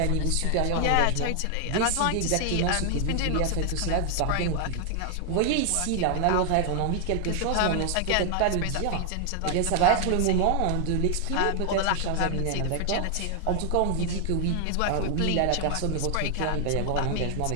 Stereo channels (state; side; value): different; both; correlation 0.00